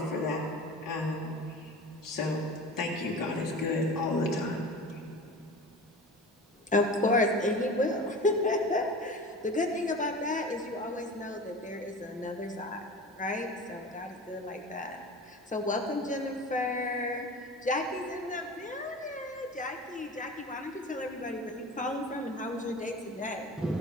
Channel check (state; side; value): normal; both; correlation 0.35